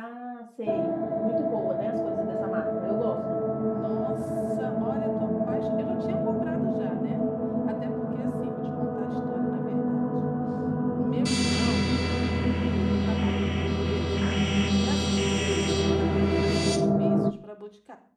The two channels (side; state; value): both; identical; correlation 1.00